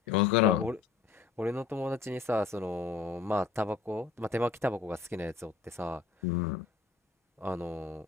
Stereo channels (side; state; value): right; quieter; 4.7 dB